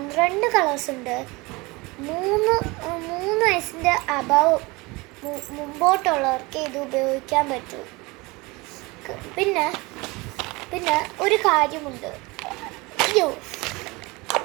കളേഴ്സ് ഉണ്ട്. 3 വയസ്സിൻ്റെ അബവ് മുമ്പോട്ടുള്ളവർക്ക് ഇത് ഉപയോഗിക്കാൻ പറ്റും. പിന്നെ ഒരു കാര്യമുണ്ട്. അയ്യോ,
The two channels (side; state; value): left; quieter; 24.2 dB